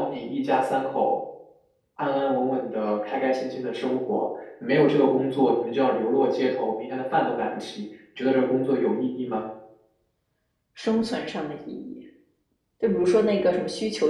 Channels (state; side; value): identical; both; correlation 1.00